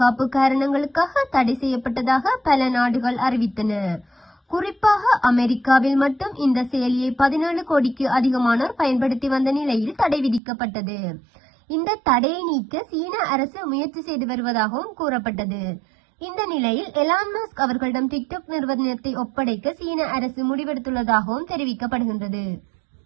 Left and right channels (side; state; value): left; drops out; at 10.4 s